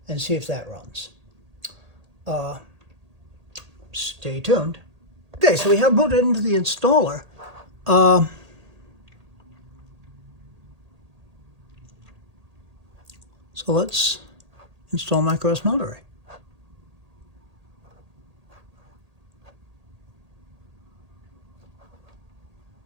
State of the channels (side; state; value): left; late; 1.8 ms